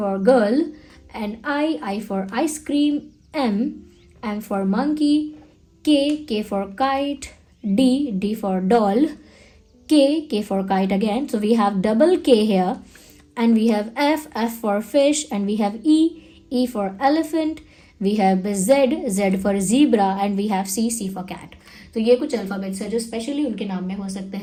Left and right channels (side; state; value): both; identical; correlation 1.00